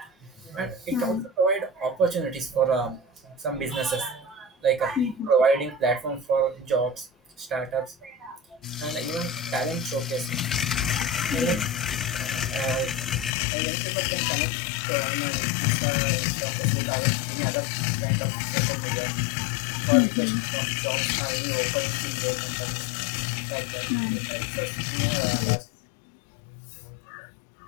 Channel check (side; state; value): right; drops out; at 13.3 s